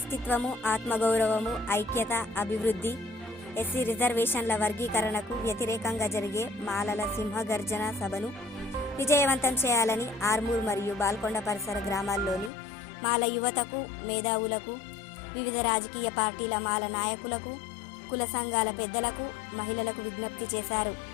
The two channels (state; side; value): drops out; right; at 12.5 s